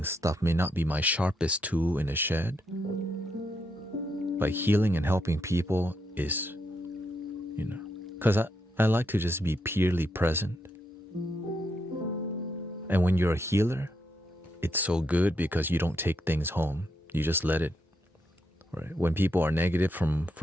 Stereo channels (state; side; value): normal; both; correlation 0.79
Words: stuff may not be my sharpest tool in the shed. But healing and helping people is, because I like to just be purely present. And when you're a healer, it's so good because you don't take things home. You just let it. Right? When people are negative from